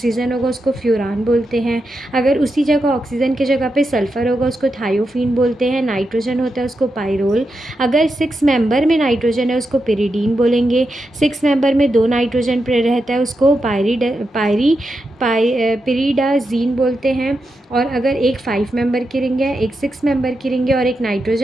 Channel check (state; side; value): normal; both; correlation 0.87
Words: होगा, उसको फ्यूरान बोलते हैं. अगर उसी जगह ऑक्सीजन की जगह पे सल्फ़र होगा उसको थायोफीन बोलते हैं. नाइट्रोजन होता है उसको पायरोल. अगर 6 मेंबर में नाइट्रोजन है उसको पिरिडीन बोलेंगे. 6 मेंबर में 2 नाइट्रोजन रहता है उसको पिरिडाजीन बोलते हैं. और अगर एक 5 मेंबर की रिंग है, एक 6 मेंबर की रिंग है और एक